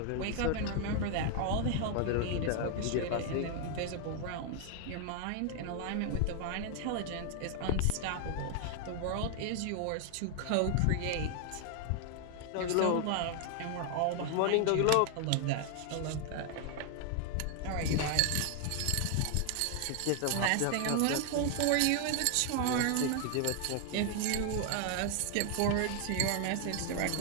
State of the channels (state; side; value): different; both; correlation 0.00